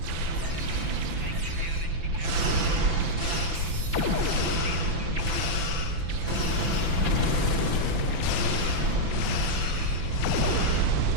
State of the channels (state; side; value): late; left; 5.9 ms